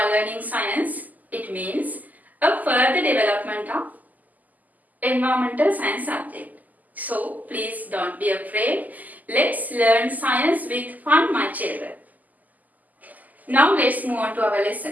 learning science. It means a further development of environmental science subject. So please don't be afraid. Let's learn science with fun, my children. Now let's move on to our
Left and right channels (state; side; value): late; left; 0.081 ms